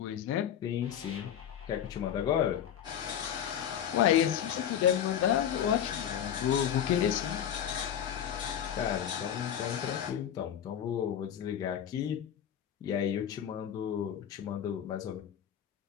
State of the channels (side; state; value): right; quieter; 9.6 dB